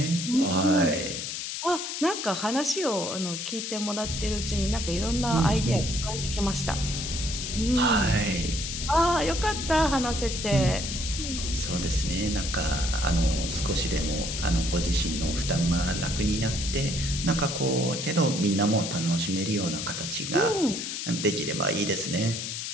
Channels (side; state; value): left; noise; hiss, 5 dB below the sound